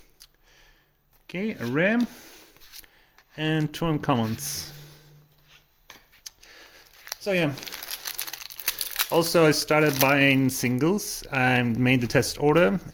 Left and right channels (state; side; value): identical; both; correlation 1.00